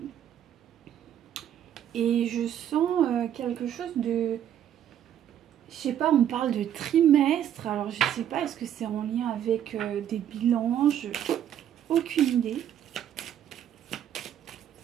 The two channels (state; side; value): quieter; left; 10.3 dB